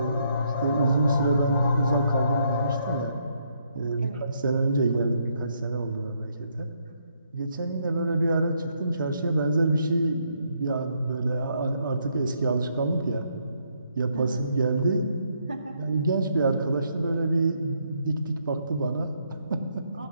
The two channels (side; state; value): both; inverted; correlation -0.74